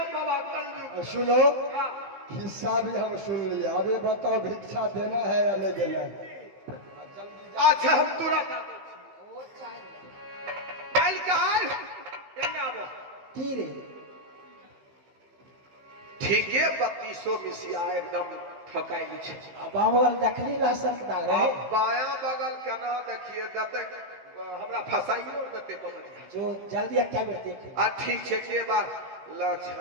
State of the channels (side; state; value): left; late; 15 ms